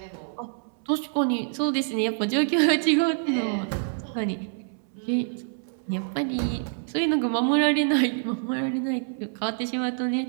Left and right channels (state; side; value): silent; left; 61 dB below the other